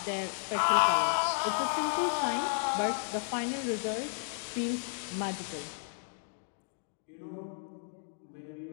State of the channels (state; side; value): silent; right; digital silence